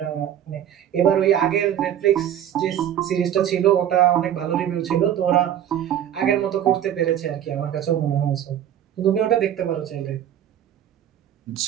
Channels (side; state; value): left; quieter; 10.5 dB